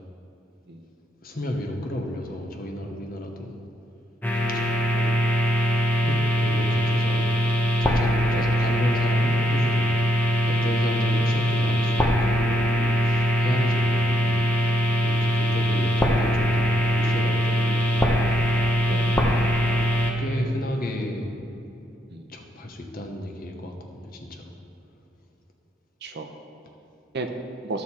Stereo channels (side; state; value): both; normal; correlation 0.77